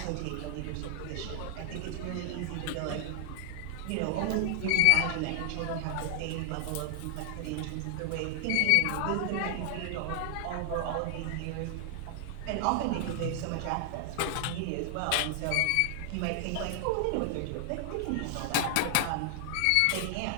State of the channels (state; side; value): different; both; correlation 0.00